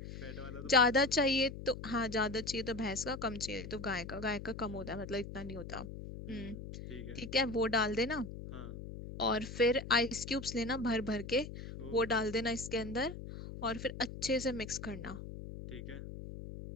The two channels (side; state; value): left; noise; hum, 10 dB below the sound